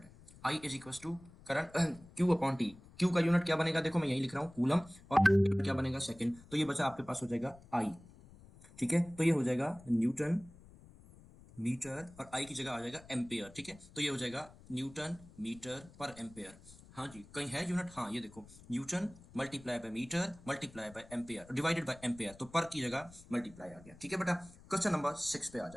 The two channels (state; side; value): noise; left; rumble, 22 dB below the sound